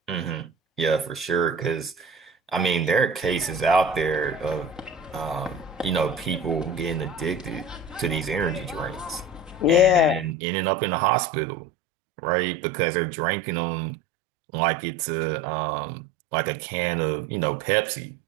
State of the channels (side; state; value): left; drops out; at 10.4 s